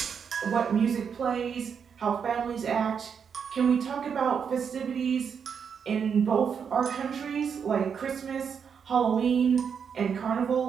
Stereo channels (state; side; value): quieter; left; 6.9 dB